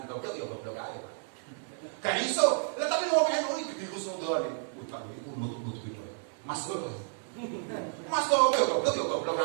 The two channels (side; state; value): left; silent; digital silence